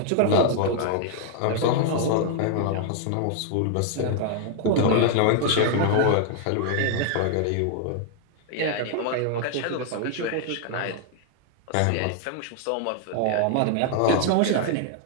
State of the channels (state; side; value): different; both; correlation 0.00